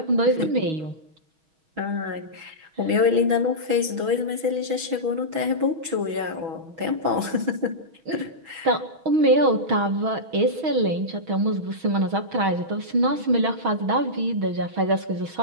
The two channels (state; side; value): late; left; 6.1 ms